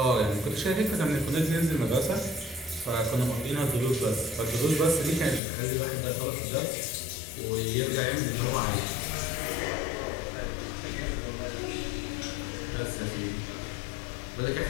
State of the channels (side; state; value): right; drops out; at 5.4 s